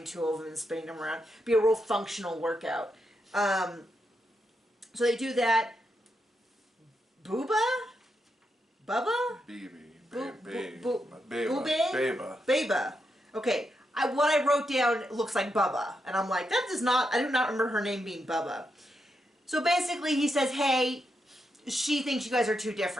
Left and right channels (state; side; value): normal; both; correlation 0.83